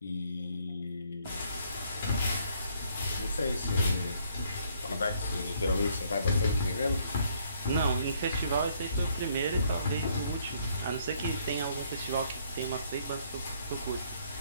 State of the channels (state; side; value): inverted; both; correlation -0.66